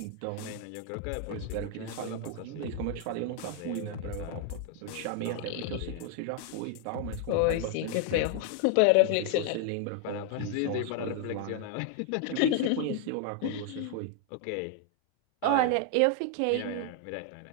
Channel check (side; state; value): both; different; correlation 0.00